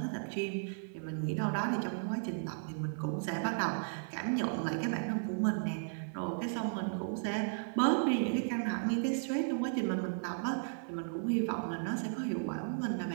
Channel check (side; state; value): left; silent; 54 dB below the other